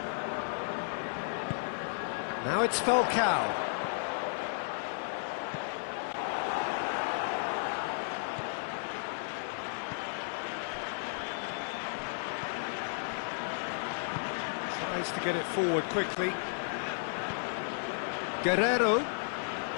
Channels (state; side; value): silent; right; 55 dB below the other